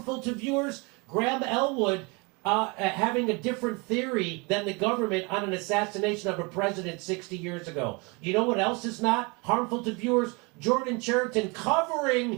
to viewers? Graham Elwood having a different theory than the government on an assassination of a president 60 years ago. You know what else is not harmful to viewers? Jordan Cheriton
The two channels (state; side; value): quieter; left; 29.1 dB